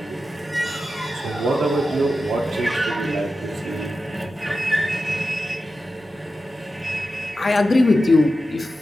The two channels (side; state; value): both; normal; correlation 0.92